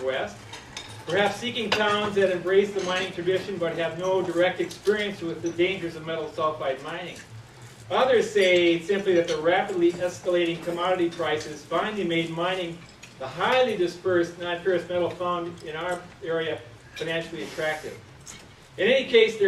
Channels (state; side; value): identical; both; correlation 1.00